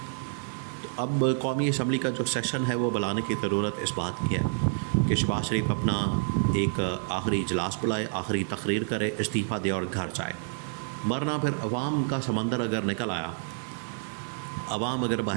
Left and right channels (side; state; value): left; silent; 55 dB below the other